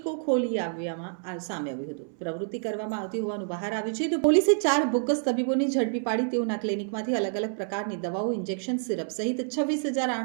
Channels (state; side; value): silent; left; 59 dB below the other